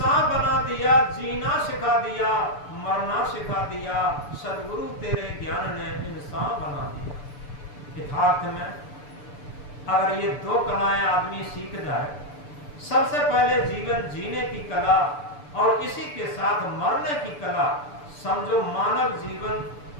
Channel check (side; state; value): right; late; 6.9 ms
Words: बना दिया, जीना सिखा दिया, मरना सिखा दिया। सदगुरु तेरे ज्ञान ने इंसान बना दिया। यथार्थ में अगर ये दो कलाएं आदमी सीख जाए, सबसे पहले जीवन जीने की कला और इसी के साथ मरने की कला, समझो मानव जीवन